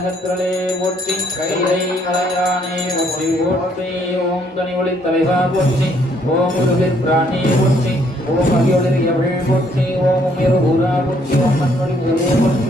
போற்றி, கைலை மலையானே போற்றி போற்றி. ஓம் தனி ஒளி தலைவா போற்றி, ஓம் உருவிற் பிராணே போற்றி, ஓம் அகியொளிர் எவள் போற்றி, ஓம் உயர் ஊரா போற்றி, ஓம் மண்ணொளி ஊரே போற்றி,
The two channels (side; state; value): both; normal; correlation 0.67